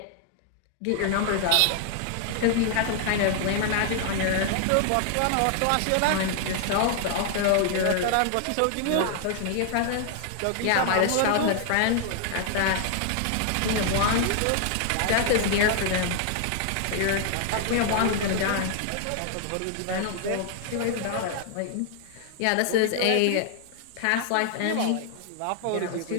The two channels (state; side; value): different; both; correlation 0.00